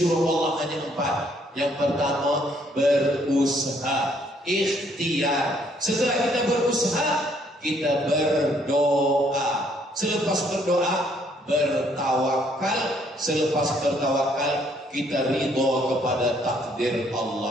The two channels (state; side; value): normal; both; correlation 0.66